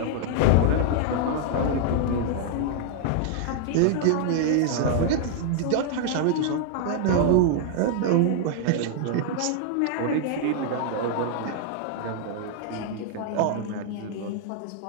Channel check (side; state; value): both; different; correlation -0.01